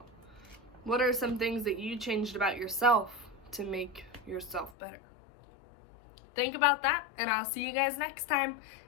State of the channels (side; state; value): right; drops out; at 4.8 s